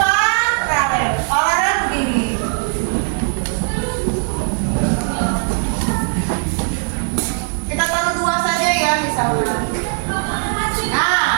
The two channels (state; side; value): silent; left; 65 dB below the other